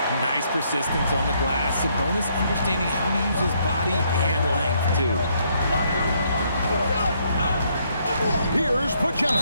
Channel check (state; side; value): inverted; both; correlation -0.71